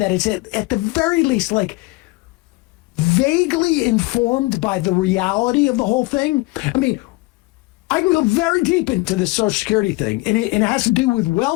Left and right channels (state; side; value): quieter; right; 22.6 dB